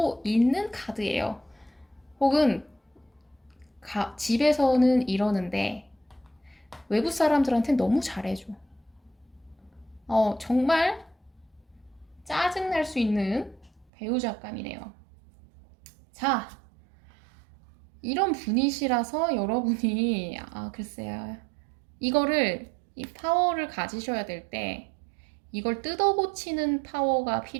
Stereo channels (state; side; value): drops out; left; at 13.9 s